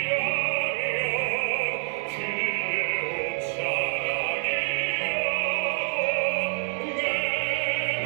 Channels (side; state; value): left; silent; 60 dB below the other